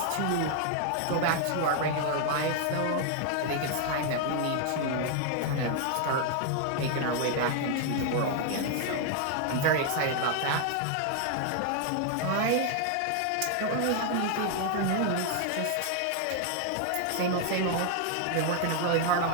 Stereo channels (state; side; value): different; both; correlation 0.00